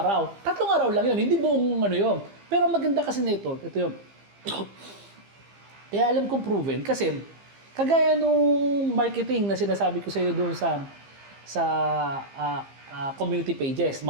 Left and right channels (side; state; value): left; late; 15 ms